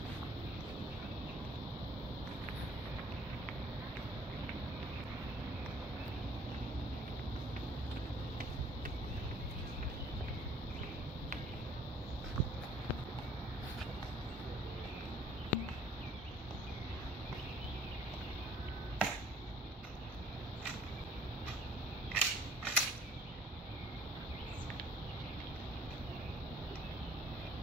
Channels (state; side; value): normal; both; correlation 0.56